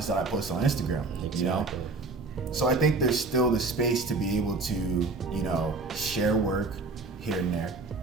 that I post on Instagram, you know? So I think there's still the space to be able to, you know, share work here and there,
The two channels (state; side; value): quieter; left; 3.7 dB